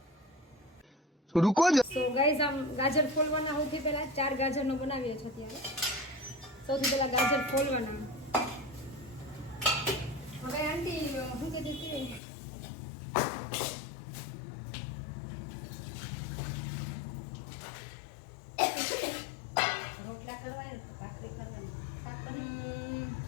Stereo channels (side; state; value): right; drops out; at 12.2 s